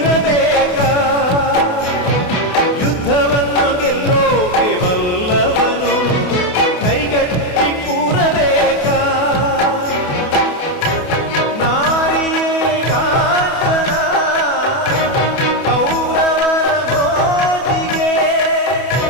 ಯುದ್ಧವನ್ನು ಗೆಲ್ಲೋಕೆ ಬಲ್ಲವನು ಕೈಗಟ್ಟಿ ಕೂರಬೇಕಾ? ನಾರಿಯೇ ಕಾಂಚನ ಕೌರವರ ಮೋಜಿಗೆ,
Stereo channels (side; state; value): right; late; 28 ms